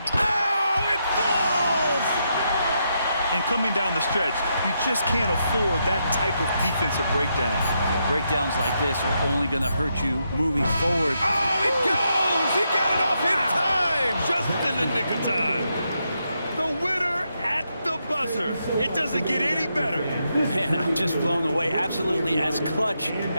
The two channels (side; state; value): both; inverted; correlation -0.81